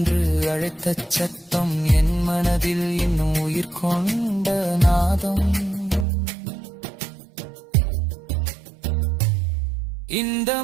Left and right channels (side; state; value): left; drops out; at 6.1 s